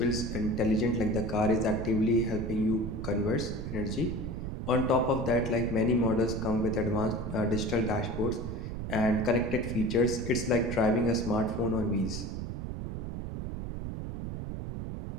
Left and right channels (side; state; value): right; noise; rumble, 5 dB below the sound